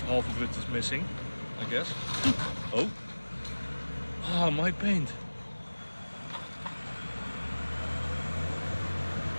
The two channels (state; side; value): inverted; both; correlation -1.00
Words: half of it is missing, I guess. Oh. Ah, my paint.